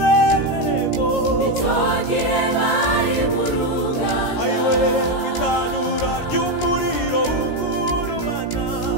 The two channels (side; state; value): right; late; 17 ms